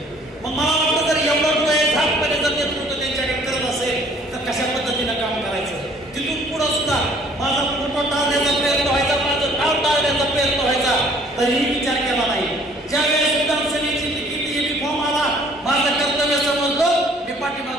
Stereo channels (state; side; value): normal; both; correlation 0.57